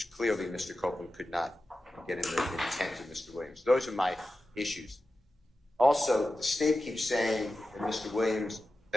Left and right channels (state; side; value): normal; both; correlation 0.93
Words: clearly Mr. Copeland could not get in the intent of Mr. Williams. Those are my issues. Also, the state keeps saying